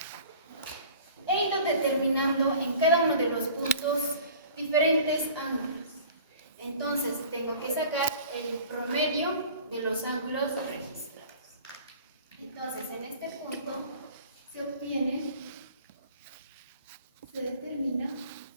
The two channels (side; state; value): both; inverted; correlation -0.46